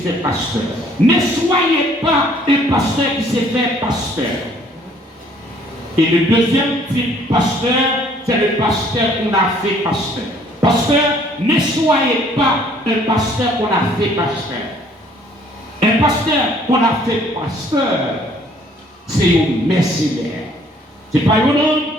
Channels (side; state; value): both; normal; correlation 0.60